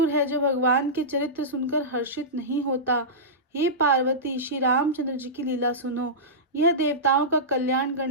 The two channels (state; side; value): normal; both; correlation -0.16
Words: है, जो भगवान के चरित्र सुनकर हर्षित नहीं होता। हे पार्वती, श्री रामचंद्र जी की लीला सुनो। यह देवताओं का कल्याण